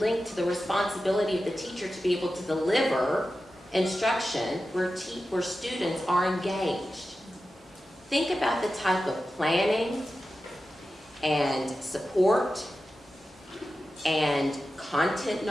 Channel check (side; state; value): both; normal; correlation 0.93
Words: to the responsibility of the teacher to be able to deliver instruction where students are engaged. Think about the type of planning and support and content